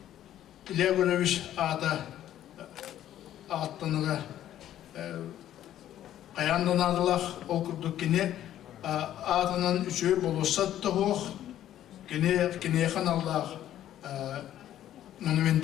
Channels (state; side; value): quieter; right; 11.9 dB